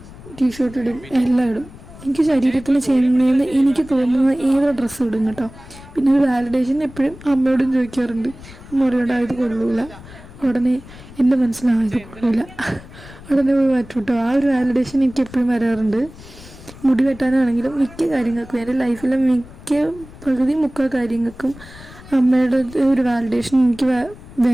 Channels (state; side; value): noise; left; rumble, 18 dB below the sound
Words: ടീഷർട്ട് ഇടും, എല്ലാം ഇടും. എനിക്ക് ശരീരത്തിന് ചെയ്യുന്നതെന്ന് എനിക്ക് തോന്നുന്ന ഏതോ ഡ്രസ്സ് ഇടും കേട്ടോ. പിന്നെ ഒരു വാലിഡേഷൻ എപ്പോഴും അമ്മയോടും ചോദിക്കാറുണ്ട്. അമ്മ പറയോടാ ഇത് കൊള്ളൂല, ഉടനെ എൻ്റെ മനസ്സിലായത് കൊള്ളൂല, ഉടനെ പോയി മാറ്റും കേട്ടോ. ആ ഒരു വാലിഡേഷൻ എനിക്ക് എപ്പോഴും വരാറുണ്ട്. മുടി വെട്ടാനാണെങ്കിലും മിക്ക കാര്യങ്ങൾക്കും, എൻ്റെ ലൈഫിലെ പകുതി മുക്കാൽ കാര്യങ്ങൾക്കും അമ്മയുടെ ഒരു വാലിഡേഷൻ എനിക്ക്